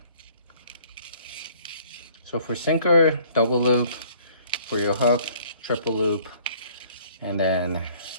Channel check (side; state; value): both; inverted; correlation -0.56